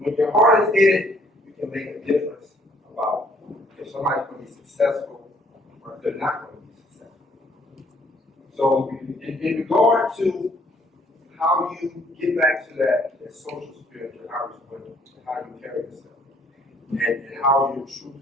your heart is in it, you can make a difference about if somebody's going to be successful or if they're not going to be successful. So in regard to how you get back to that social spirit, and how you carry yourself, and how your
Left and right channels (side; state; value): both; normal; correlation 0.63